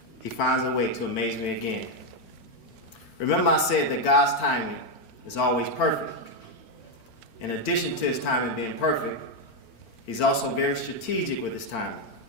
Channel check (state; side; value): late; right; 4.4 ms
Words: He finds a way to amaze me again. Remember I said that God's timing is always perfect. in addition to his timing being perfect, he's also very strategic with his timing.